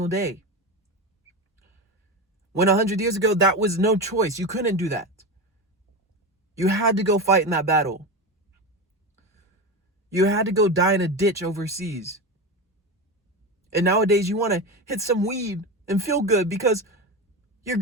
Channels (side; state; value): both; normal; correlation 0.21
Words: day. When 100 years ago, that was no choice. You couldn't do that. You had to go fight in that battle. You had to go die in a ditch overseas. And nowadays, you want to hit some weed and feel good because your